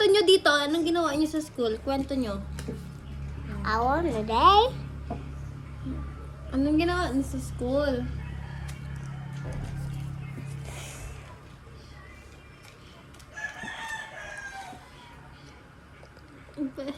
niyo dito. Anong ginawa niyo sa school? Kwento niyo. Ako na day. Anong ginawa niyo sa school?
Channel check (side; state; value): both; identical; correlation 1.00